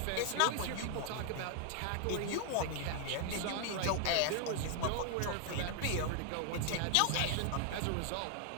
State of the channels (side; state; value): both; different; correlation 0.00